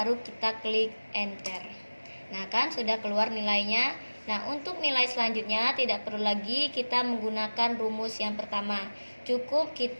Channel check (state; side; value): inverted; both; correlation -1.00